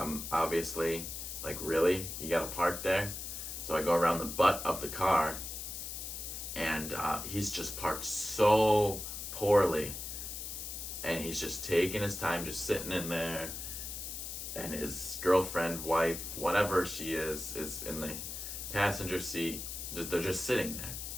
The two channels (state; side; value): noise; left; hiss, 7 dB below the sound